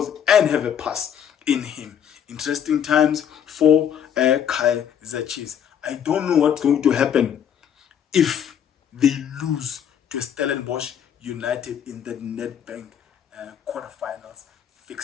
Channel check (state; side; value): quieter; right; 8.8 dB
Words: and have a pass in him. Interesting times for KAIZER Chiefs. I don't know what's going to happen if they lose to Stellenbosch United in the Nedbank quarterfinals